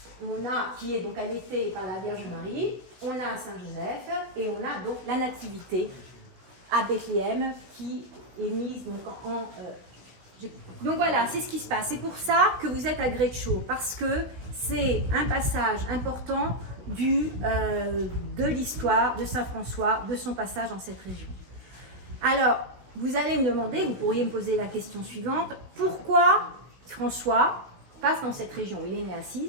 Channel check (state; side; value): late; left; 16 ms